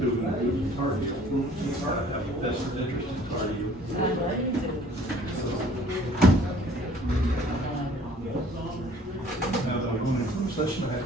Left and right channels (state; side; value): normal; both; correlation 0.55